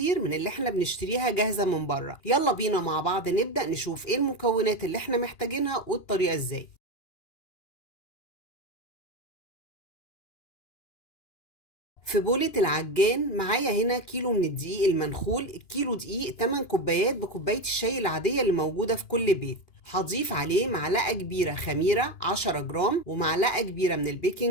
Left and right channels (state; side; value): late; right; 2.9 ms